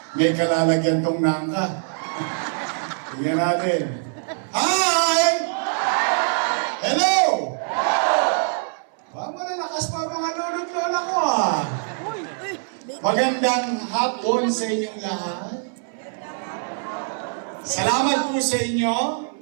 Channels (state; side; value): silent; left; 61 dB below the other